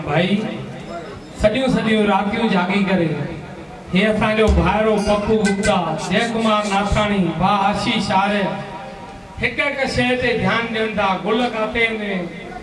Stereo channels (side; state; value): both; identical; correlation 1.00